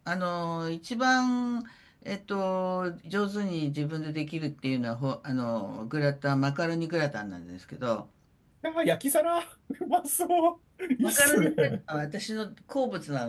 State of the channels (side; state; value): both; identical; correlation 1.00